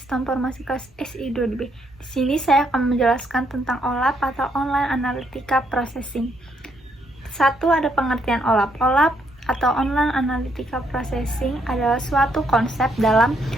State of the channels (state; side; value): normal; both; correlation 0.73